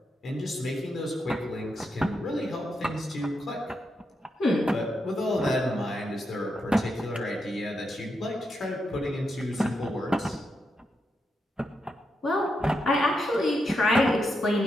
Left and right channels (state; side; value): normal; both; correlation 0.84